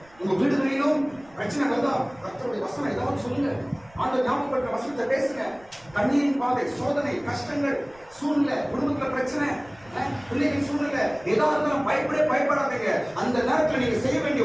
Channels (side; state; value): right; noise; rumble, 27 dB below the sound